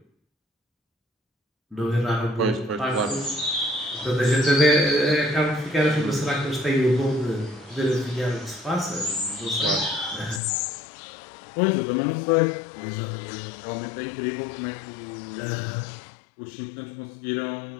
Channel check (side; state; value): right; drops out; at 10.4 s